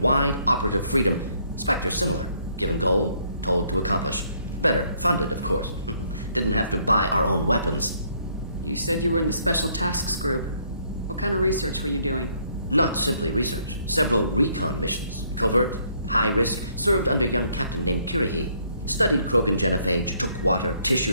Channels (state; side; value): inverted; both; correlation -0.68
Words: wide operative freedom. Spectres similar, given goal, told to accomplish. Better, funded, of course. Didn't have to buy our own weapons. You said you were in the Special Tasks Group. What kind of research were you doing? Not simply research. Several recon missions. Covert, high risk, served under young captain named Kirihi. Studied Krogan genophage, took water, tissue